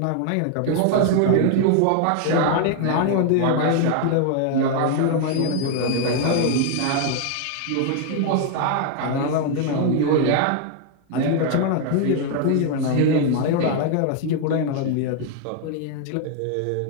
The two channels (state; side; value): different; both; correlation 0.00